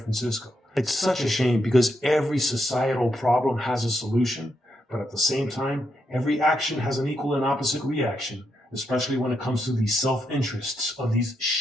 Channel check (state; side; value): normal; both; correlation 0.82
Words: It's such a shame because every societal problem has a solution, but at the same time, every action has an equal and opposite reaction, especially when it comes to the self-interests of these